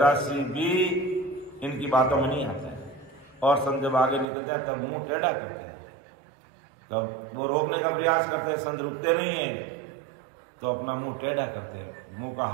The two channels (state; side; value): drops out; left; at 4.2 s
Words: सी भी इनकी बातों में नहीं आता है और संत जब आगे निकलते हैं तब मुंह टेढ़ा करते हैं, तब वो रोकने का प्रयास करते हैं, संत रुकते नहीं है तो अपना मुंह टेढ़ा करते हैं, मुंह का